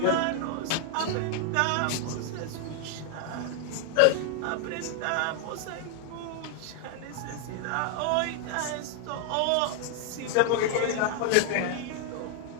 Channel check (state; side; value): different; both; correlation 0.00